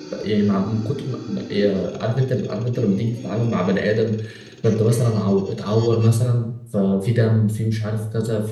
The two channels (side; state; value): both; identical; correlation 1.00